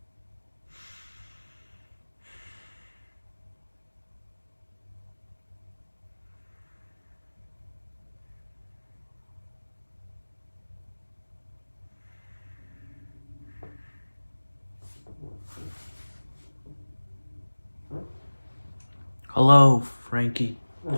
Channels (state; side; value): inverted; both; correlation -1.00